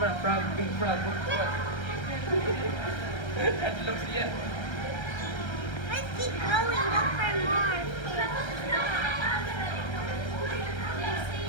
na, frog, big frog. At lang siya. Let's keep going. Look for more.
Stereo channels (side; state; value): right; late; 1.3 ms